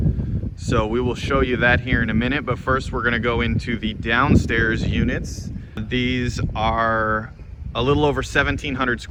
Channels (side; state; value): both; identical; correlation 1.00